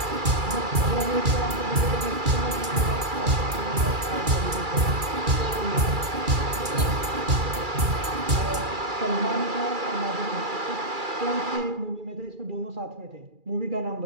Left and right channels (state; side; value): late; left; 2.3 ms